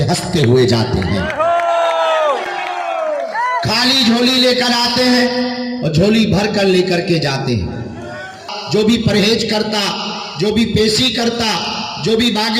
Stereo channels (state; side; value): identical; both; correlation 1.00